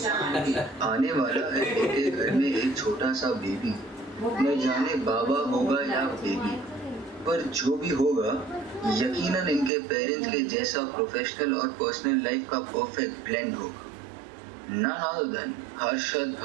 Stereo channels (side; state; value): left; drops out; at 9.7 s